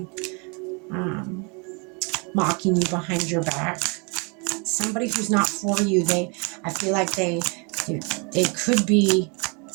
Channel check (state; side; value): quieter; left; 32.7 dB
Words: mocking you behind your back. Somebody who's not for you. I feel like they could be